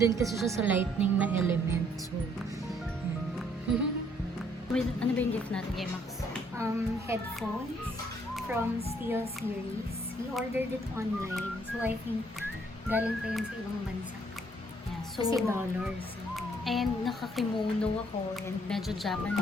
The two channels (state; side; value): normal; both; correlation 0.66